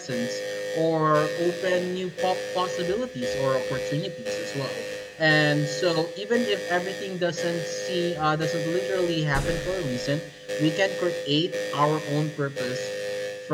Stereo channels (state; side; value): identical; both; correlation 1.00